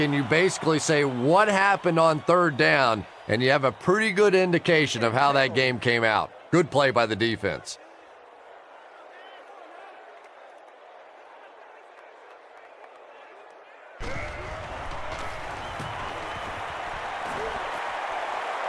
you basically say what happened on 3rd down, and you have a pretty good indication of how that game came out. Good play by the defense.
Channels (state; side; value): identical; both; correlation 1.00